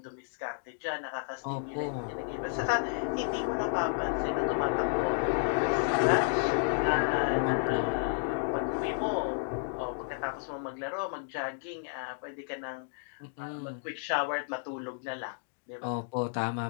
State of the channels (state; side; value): silent; right; digital silence